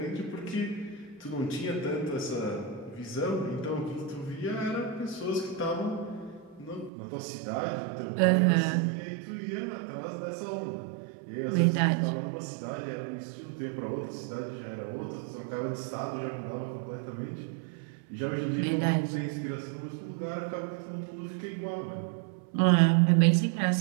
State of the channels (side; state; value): left; drops out; at 6.9 s